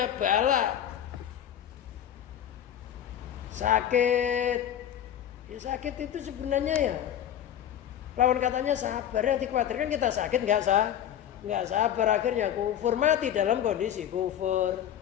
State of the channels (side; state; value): right; quieter; 10.2 dB